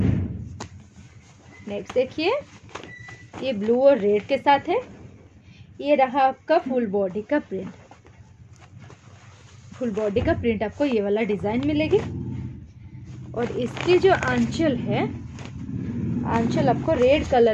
नेक्स्ट देखिए, ये ब्लू और रेड के साथ है। ये रहा आपका फुल बॉडी का प्रिंट। फुल बॉडी का प्रिंट आपको ये वाला डिज़ाइन मिलेगी और इसकी जो आंचल है, आंचल आपको रेड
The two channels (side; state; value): both; identical; correlation 1.00